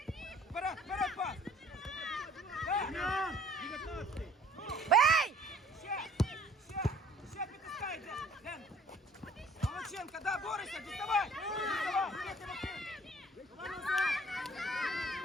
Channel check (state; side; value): normal; both; correlation 0.54